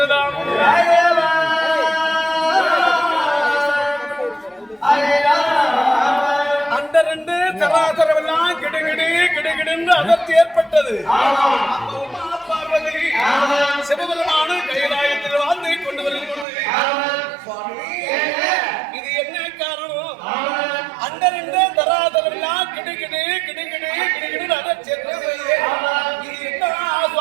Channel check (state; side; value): drops out; left; at 16.4 s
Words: அந்த 2 சராசரம் கிடுகிடி கிடுகிடு அதர்த்தி ஏற்பட்டது. பார்வதி சிவபெருமான கைலாயத்தில் வாழ்ந்து கொண்டு வருகிறது. இது என்ன காரணம்? அந்த 2 தராதரம் கிடுகிடு கிடுகிடு கிடுகிடு அதர்த்தி ஏற்பட்டது. இது என்ன